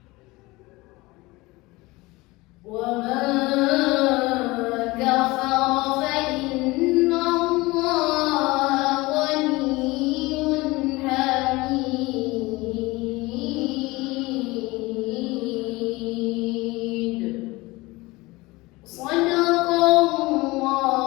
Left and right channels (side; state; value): right; quieter; 21.8 dB